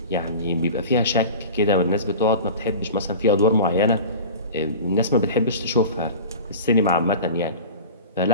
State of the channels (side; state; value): both; inverted; correlation -0.36